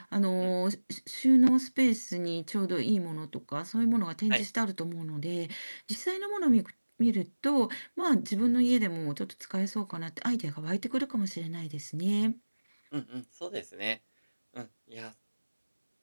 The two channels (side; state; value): both; inverted; correlation -1.00